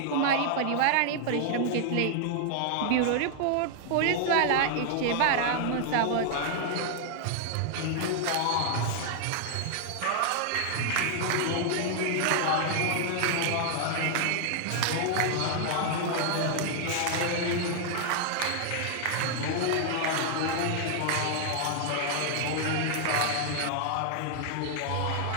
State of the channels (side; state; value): both; different; correlation 0.00